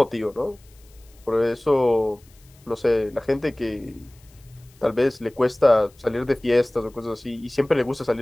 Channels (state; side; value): noise; left; hiss, 29 dB below the sound